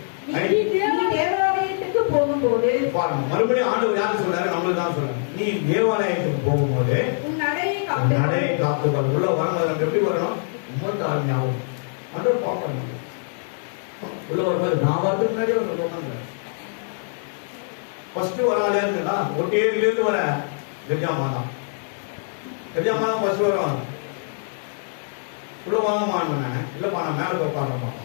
தேவாலயத்துக்கு போகும்போது பாருங்க, மறுபடியும் ஆண்டவர் யாரு சொல்றாரு, நம்மளுக்கு தான் சொல்றாரு. நீ தேவாலயத்துக்கு போகும்போது நடையை காத்துக்கொள். உள்ள வரணும், எப்படி வரணும், ரொம்ப தாழ்மையாகும். ஆண்டவர் பார்க்கணும். உள்ள வரும்போது நான் வரதுக்கு முன்னாடியே ஒரு உட்காந்து ஃபர்ஸ்ட் வராலே இருந்தா ஒட்டேரியிலிருந்து வர கஜாமா தான். கஜாமா தான் ஃபர்ஸ்ட் வரும். உள்ள வாங்கம்மான்னு இல்லப்பா நான் மேலே உட்காரமா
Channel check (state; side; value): silent; right; 63 dB below the other